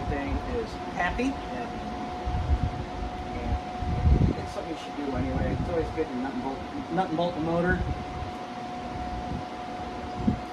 is happy. And it's something you should do anyway. It's always good to nut and bolt the motor.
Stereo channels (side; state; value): both; identical; correlation 1.00